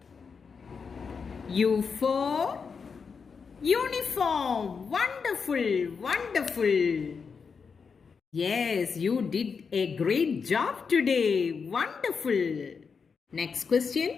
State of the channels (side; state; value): right; quieter; 5.6 dB